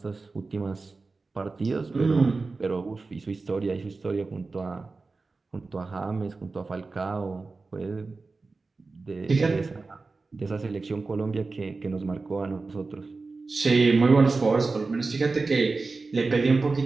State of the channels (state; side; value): quieter; left; 3.9 dB